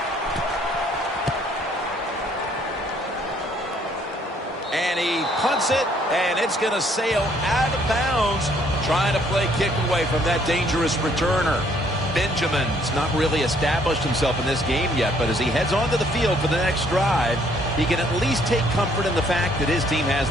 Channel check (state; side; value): normal; both; correlation 0.64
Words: And he punts it, and it's going to sail out of bounds, trying to play kick away from that dangerous returner. Benjamin's not really established himself in this game yet, but as he heads onto the field for the next drive, he can at least take comfort in the fact that his team has